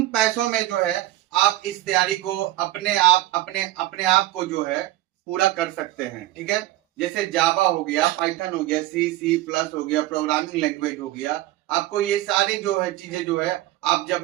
पैसों में जो है आप इस तैयारी को अपने आप को जो है पूरा कर सकते हैं, ठीक है। जैसे जावा हो गया, पाइथन हो गया, C++ हो गया, प्रोग्रामिंग लैंग्वेज हो गया, आपको ये सारे जो है चीजें जो है आप जब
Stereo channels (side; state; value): left; quieter; 15.7 dB